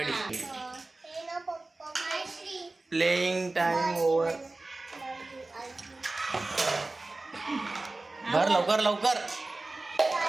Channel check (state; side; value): quieter; left; 3.1 dB